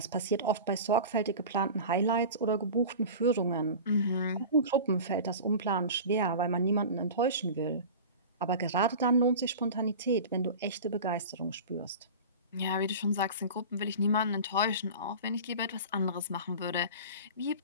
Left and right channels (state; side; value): inverted; both; correlation -0.34